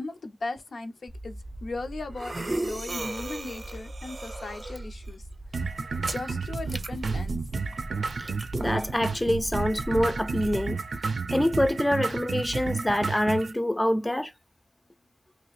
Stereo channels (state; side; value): normal; both; correlation 0.95